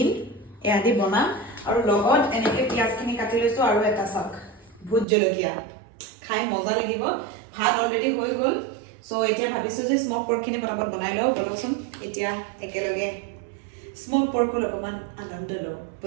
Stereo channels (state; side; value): drops out; left; at 5.1 s